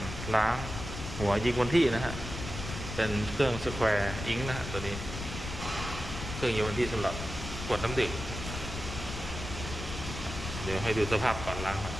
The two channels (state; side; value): noise; left; rumble, 7 dB below the sound